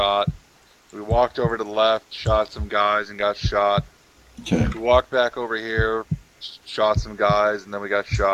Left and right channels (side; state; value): both; identical; correlation 1.00